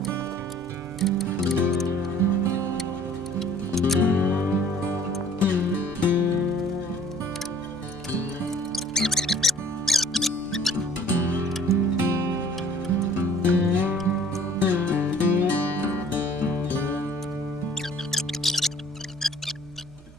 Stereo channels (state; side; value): noise; right; hum, 24 dB below the sound